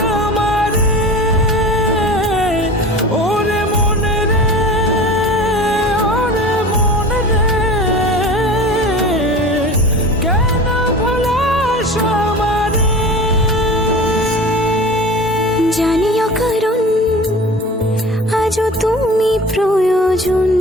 আমারে। ওরে মনে রে, ওরে মনে রে, কেন ভোলাস আমারে। জানিও কারণ আজও তুমি প্রয়োজন,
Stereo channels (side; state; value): both; normal; correlation 0.36